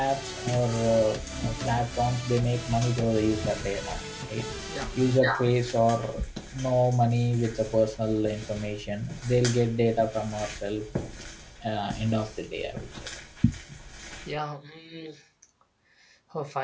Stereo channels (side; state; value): both; identical; correlation 1.00